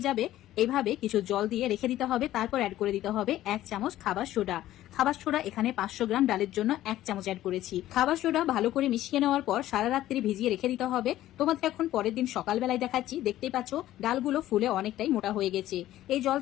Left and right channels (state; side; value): quieter; right; 14.1 dB